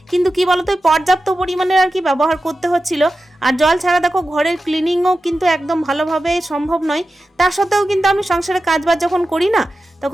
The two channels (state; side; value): normal; both; correlation 0.93